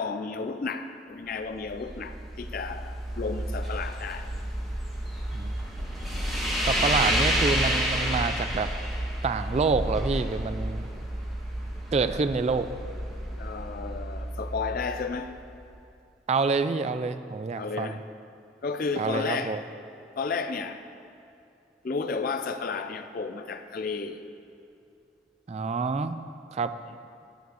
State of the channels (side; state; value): both; normal; correlation 0.44